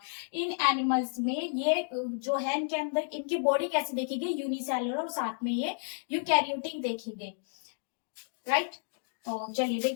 इन एनिमल्स में ये जो है इनके अंदर इनकी बॉडी कैसे देखेगी, यूनिसेलुलर और साथ में ये यूकैरियोटिक देखेंगे, राइट। तो चलिए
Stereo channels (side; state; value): right; silent; digital silence